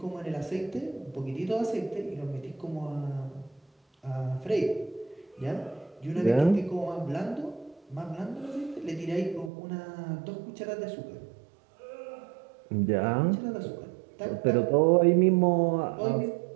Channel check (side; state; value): left; drops out; at 9.5 s